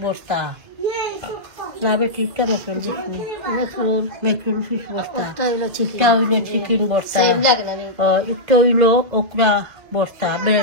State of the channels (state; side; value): late; left; 2.1 ms